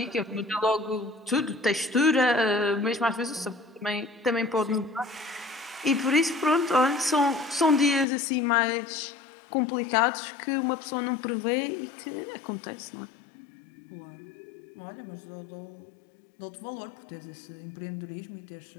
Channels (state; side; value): drops out; right; at 8.1 s